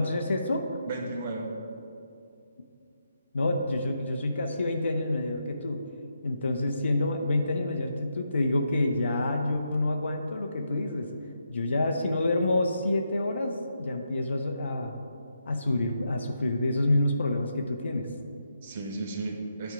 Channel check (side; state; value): both; inverted; correlation -0.82